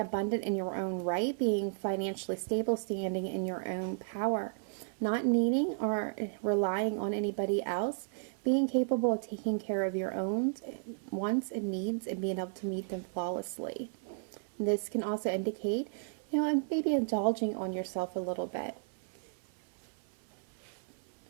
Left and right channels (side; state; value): left; silent; 55 dB below the other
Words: in your own right, being financially stable, standing in your own power, not needing or relying on anybody else, being capable of taking care of your own wants and needs and being able to meet them flawlessly. This can also indicate, maybe indulging on yourself a little bit.